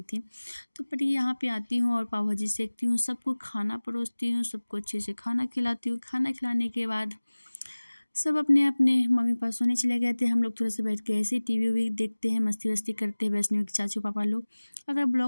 थी। तो पर यहाँ पे आती हूँ और पाव भाजी सेकती हूँ, सबको खाना परोसती हूँ, सबको अच्छे से खाना खिलाती हूँ। खाना खिलाने के बाद सब अपने अपने मम्मी पापा सोने चले गए थे। हम लोग थोड़ा सा बैठ के ऐसे टीवी वी देखते हैं, मस्ती वस्ती करते हैं, वैष्णवी के चाचू पापा लोग। अगर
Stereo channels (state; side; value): inverted; both; correlation -1.00